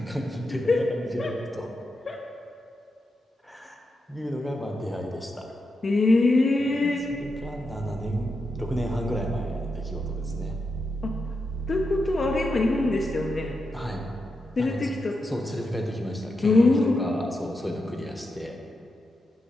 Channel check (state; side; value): normal; both; correlation 0.86